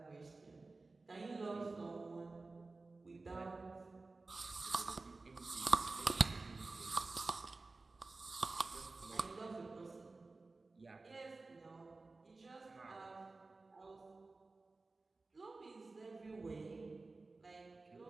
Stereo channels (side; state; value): left; quieter; 3.5 dB